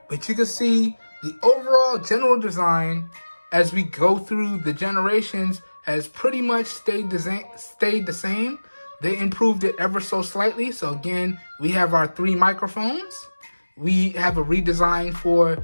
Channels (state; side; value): inverted; both; correlation -1.00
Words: But you can see the overall general design as we go through the generations has pretty much stayed the same. They improved it ever so slightly. So again, we have our 3 microphones. We have a redesign for